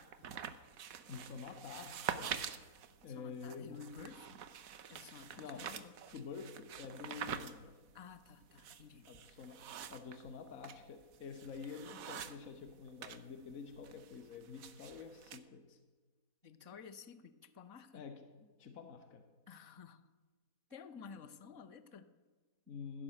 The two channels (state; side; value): late; left; 4.1 ms